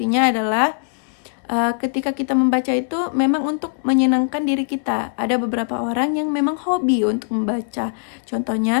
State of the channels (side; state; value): right; silent; 65 dB below the other